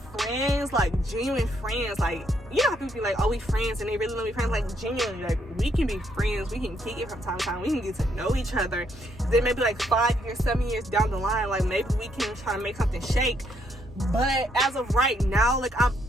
like genuine friends. Like, you know how people be like, oh, we friends, and they really want to be friends. Like, genuinely, like, we can be friends. We can kick it from time to time. We can get to know each other. Then maybe like 5 years, 7 years down the line, like maybe we can try to make something shake. But as of right now, like, I'm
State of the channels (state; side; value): normal; both; correlation 0.73